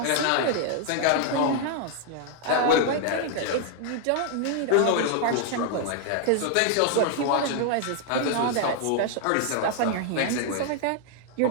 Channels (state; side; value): different; both; correlation 0.00